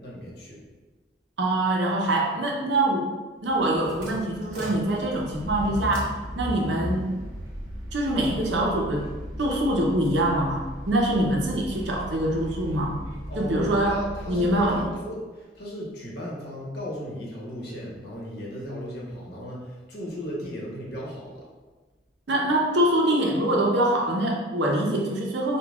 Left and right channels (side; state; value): both; normal; correlation 0.40